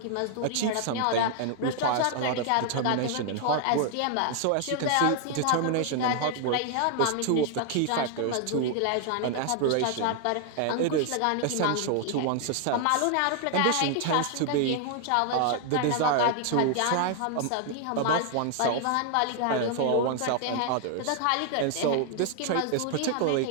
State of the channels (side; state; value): both; different; correlation 0.00